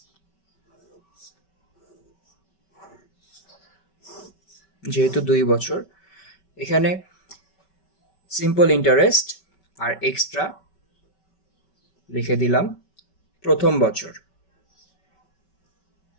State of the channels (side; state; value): right; late; 5.2 ms